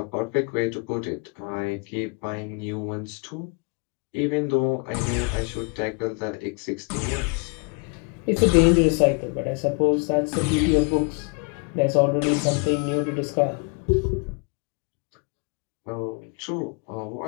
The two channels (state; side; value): quieter; right; 33.6 dB